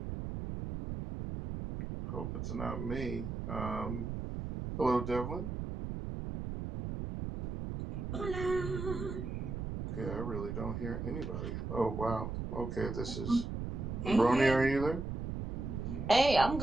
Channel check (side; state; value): right; noise; rumble, 5 dB below the sound